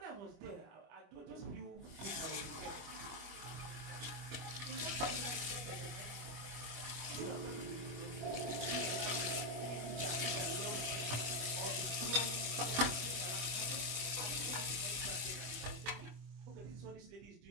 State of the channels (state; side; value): late; left; 25 ms